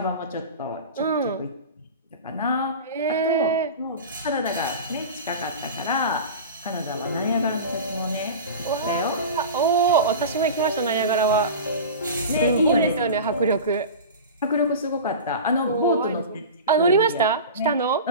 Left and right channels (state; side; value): inverted; both; correlation -0.31